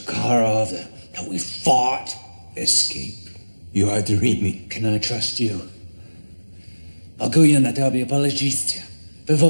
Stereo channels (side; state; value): both; inverted; correlation -1.00